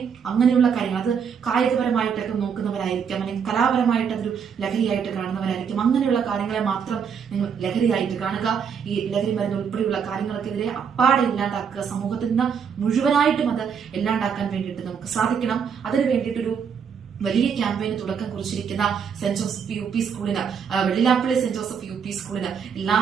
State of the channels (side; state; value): left; quieter; 6.9 dB